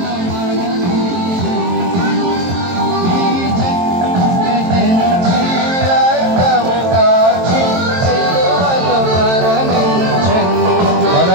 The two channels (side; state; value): left; late; 22 ms